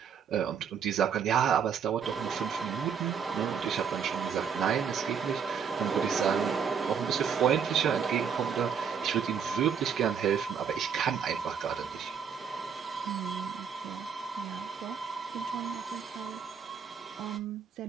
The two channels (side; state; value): left; quieter; 7.0 dB